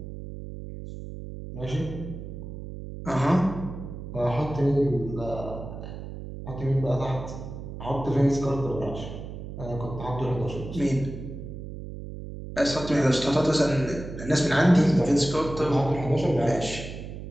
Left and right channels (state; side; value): noise; right; hum, 10 dB below the sound